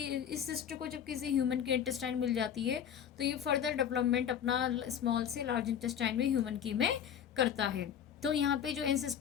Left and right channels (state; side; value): quieter; right; 8.9 dB